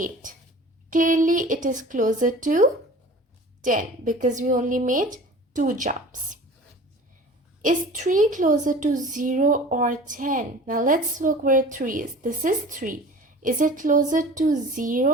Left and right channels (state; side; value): normal; both; correlation 0.41